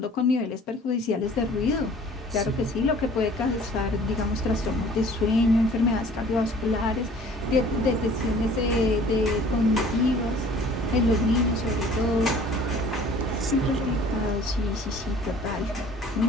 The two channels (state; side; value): normal; both; correlation 0.51